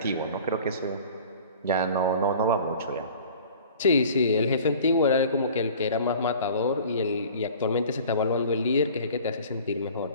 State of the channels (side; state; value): both; inverted; correlation -0.45